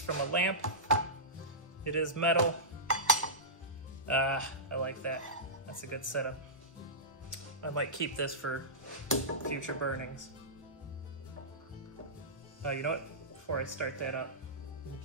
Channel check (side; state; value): both; normal; correlation -0.17